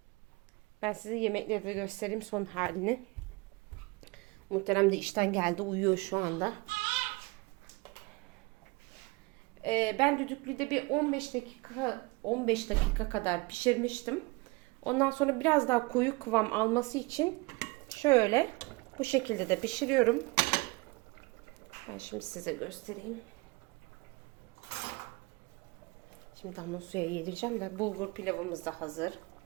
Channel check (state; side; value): quieter; left; 25.9 dB